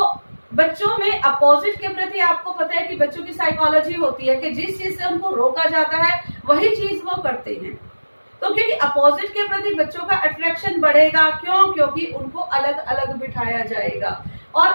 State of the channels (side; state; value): both; inverted; correlation -1.00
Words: बच्चों में अपोजिट के प्रति, आपको पता है कि बच्चों की साइकोलॉजी होती है कि जिस चीज से उनको रोका जाता है वही चीज वो करते हैं। तो क्योंकि अपोजिट के प्रति बच्चों का अट्रैक्शन बढ़ेगा, क्यों? क्योंकि उनको अलग अलग बिठाया जाएगा